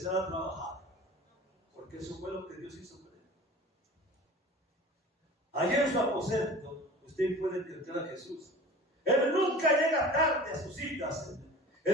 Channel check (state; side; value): normal; both; correlation 0.40